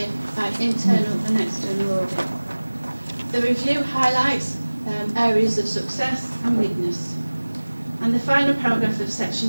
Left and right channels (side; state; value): both; inverted; correlation -1.00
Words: by internal and external audit. The review highlights areas of success and weakness. And the final paragraph of